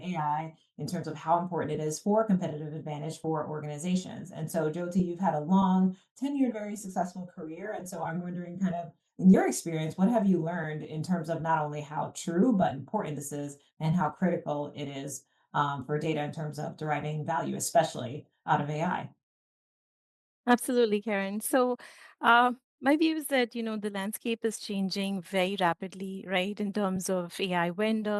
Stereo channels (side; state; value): both; identical; correlation 1.00